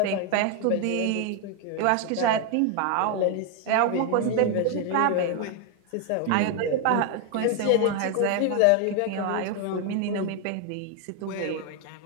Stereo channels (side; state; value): both; different; correlation 0.01